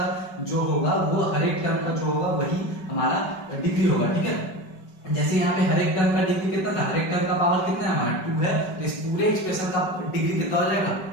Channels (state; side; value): late; right; 5.3 ms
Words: जो होगा वो हर एक टर्म का जो होगा वही हमारा डिग्री होगा, ठीक है। जैसे यहाँ पे हर एक टर्म का डिग्री कितना था? हर एक टर्म का पावर कितना है हमारा? 2 है। तो इस पूरे एक्सप्रेशन का डिग्री कितना हो जाएगा?